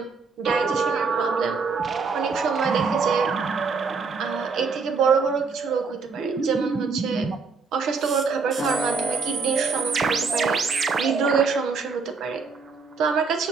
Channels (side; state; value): left; quieter; 4.9 dB